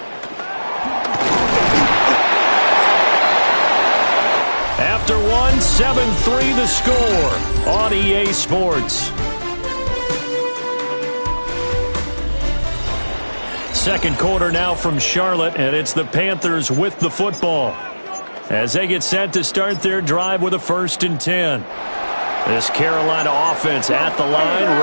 After one, 7-3 the score on EA Sports. Second quarter now from Charlotte, and it's the Panthers with the football as they get set to start their drive with a 1st and 10. This Carolina offense at the line,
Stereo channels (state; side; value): inverted; both; correlation -1.00